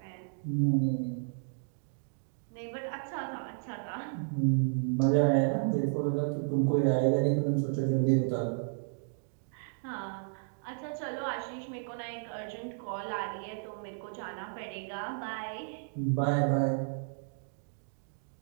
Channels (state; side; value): silent; left; digital silence